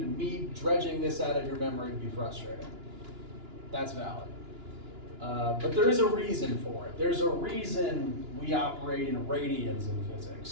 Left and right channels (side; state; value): left; late; 2.9 ms